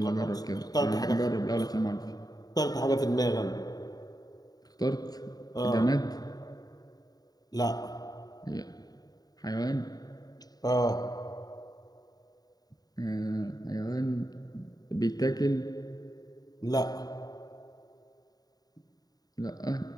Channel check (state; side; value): late; right; 0.18 ms